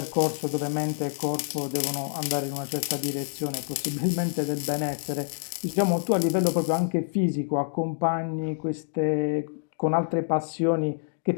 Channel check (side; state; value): right; silent; digital silence